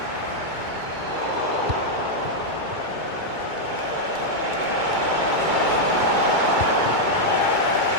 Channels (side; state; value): left; late; 2.2 ms